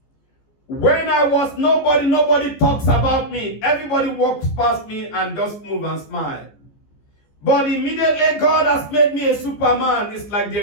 When I was nobody, nobody talks about me. Everybody walks past me and just move and smile. But immediately God has made me a Superman. It's like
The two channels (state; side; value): late; right; 14 ms